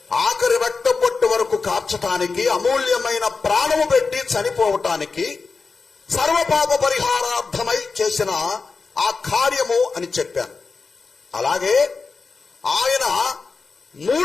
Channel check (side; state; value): right; quieter; 4.4 dB